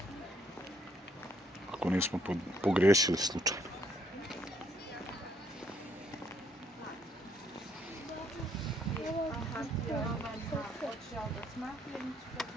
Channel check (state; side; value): normal; both; correlation 0.69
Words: ako nismo pogriješili slučajno.